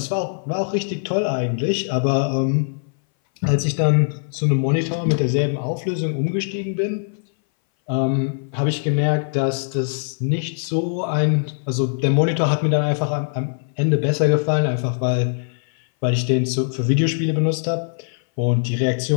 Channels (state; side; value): silent; right; 60 dB below the other